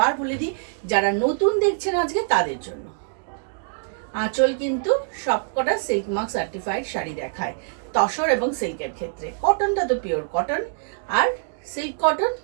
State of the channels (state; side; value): silent; left; digital silence